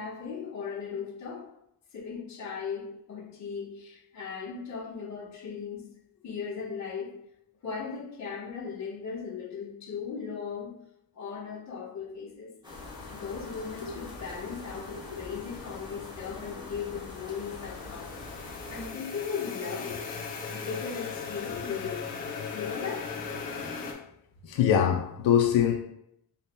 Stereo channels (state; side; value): quieter; right; 7.2 dB